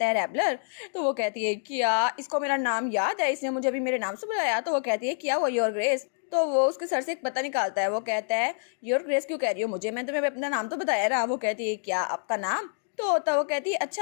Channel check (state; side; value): silent; right; digital silence